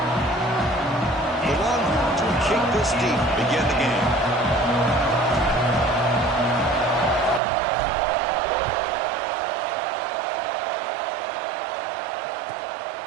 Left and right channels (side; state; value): left; drops out; at 7.4 s